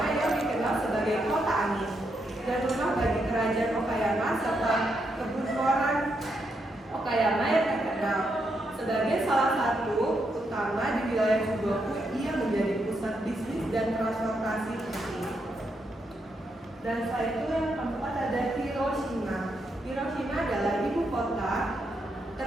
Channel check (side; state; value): both; normal; correlation 0.80